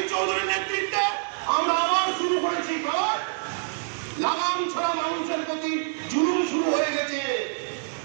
চৌধুরীর নেতৃত্বে আমরা আবার শুরু করেছি, কারণ লাগাম ছাড়া মানুষের প্রতি জুলুম শুরু হয়ে গেছে।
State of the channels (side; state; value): left; silent; 61 dB below the other